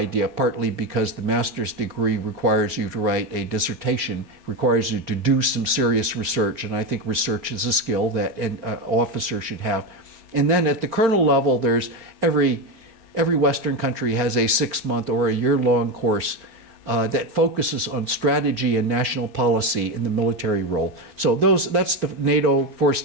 partly because the master's degree requires you to write a dissertation, requires you to do some serious research, and I think research is a skill that an officer should have. And then at the colonel level, there's every Western country has a 6-month or a year-long course that focuses on strategy and national policy in the military role. So that's the NATO 4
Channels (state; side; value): late; left; 4.4 ms